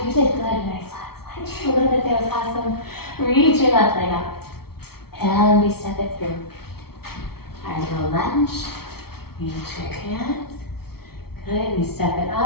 you did good, nice. Slide just a little bit, that was awesome. Reach your left leg up, and we step it through. Our little lunge, reach your hands. Good, we step it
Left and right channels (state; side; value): late; right; 0.95 ms